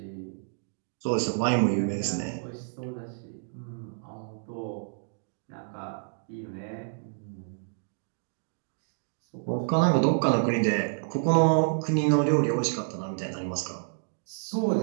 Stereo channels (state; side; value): silent; left; digital silence